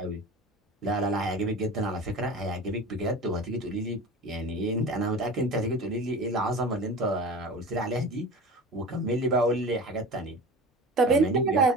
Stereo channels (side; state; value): both; normal; correlation 0.35